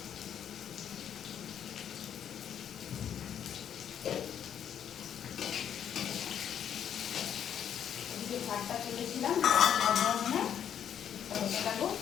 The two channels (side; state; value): right; quieter; 9.1 dB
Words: এদিকে ভাতটা তুলেছিলাম মানে ওটা দেবো,